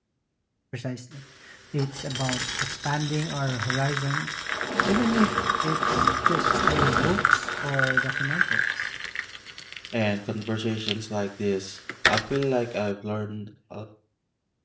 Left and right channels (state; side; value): identical; both; correlation 1.00